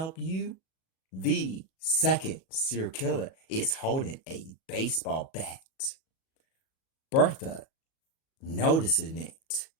you? The second serial killer is holding a baseball bat. Bertha noticing it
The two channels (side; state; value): right; late; 37 ms